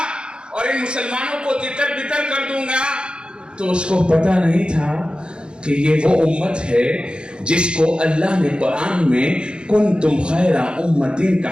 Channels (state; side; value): late; left; 0.052 ms